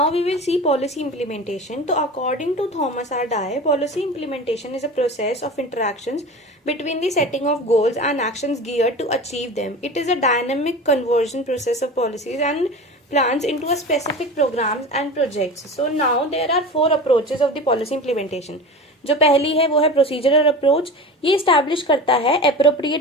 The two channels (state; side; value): normal; both; correlation 0.32